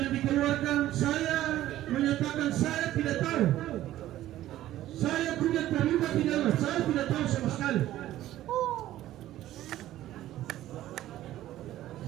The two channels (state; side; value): quieter; left; 14.0 dB